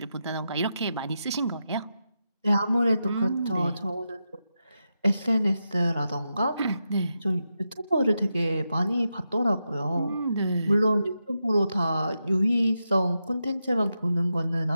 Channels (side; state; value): both; inverted; correlation -0.87